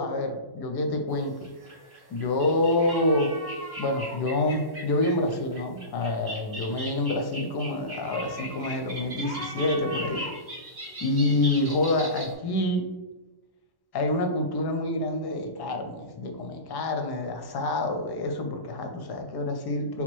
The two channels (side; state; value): right; late; 1.1 ms